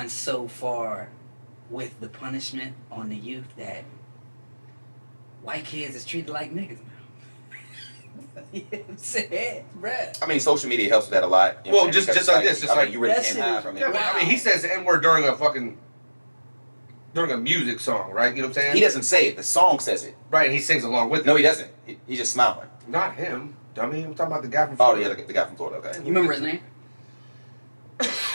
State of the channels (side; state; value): both; inverted; correlation -1.00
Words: so far with the punishment on the youth that white kids is treated like niggas now. You know what I'm saying, bruh? I mean, social media helps with that a lot. You know Well, what I'm saying? just Because like it's this, just I mean, like you really that can't shit hide is- from it. Yeah, but I mean, he says the N-word during a music song, right? You know what I'm saying? He doesn't say it. The song says it. Right, and he sings along with it. No, he doesn't. He's just smiling. Not him, dummy. I'm talking about the guy from Oh, Florida. yeah, the guy from Florida. Okay. You remember his name?